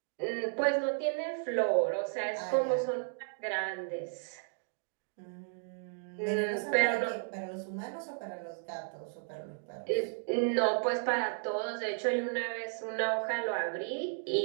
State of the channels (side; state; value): left; silent; digital silence